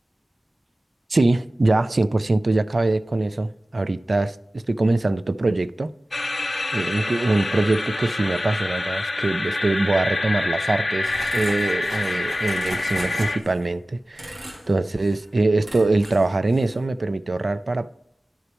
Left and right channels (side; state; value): both; normal; correlation 0.97